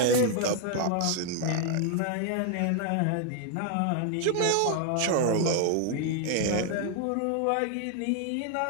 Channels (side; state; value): both; different; correlation 0.00